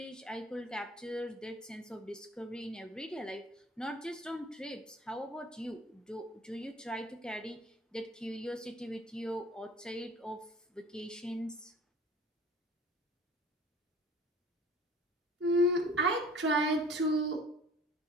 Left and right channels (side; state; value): both; normal; correlation 0.48